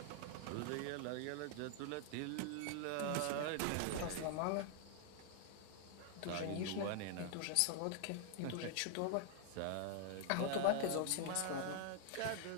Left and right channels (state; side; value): different; both; correlation 0.00